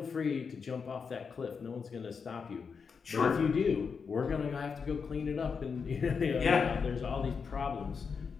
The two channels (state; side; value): quieter; right; 5.7 dB